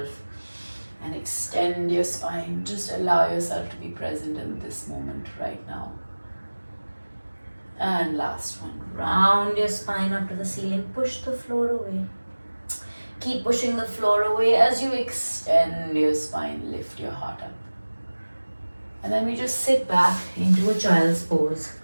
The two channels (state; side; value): inverted; both; correlation -1.00